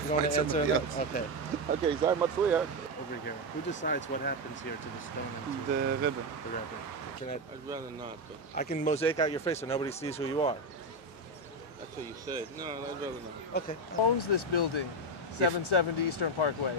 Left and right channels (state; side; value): normal; both; correlation 0.09